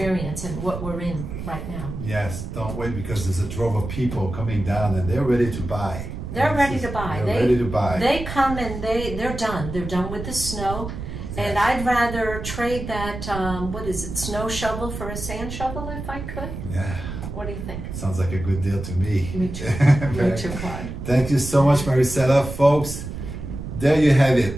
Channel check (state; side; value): noise; right; rumble, 8 dB below the sound